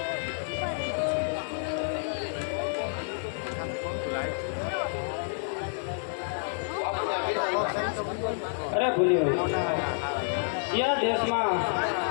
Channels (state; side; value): silent; right; 58 dB below the other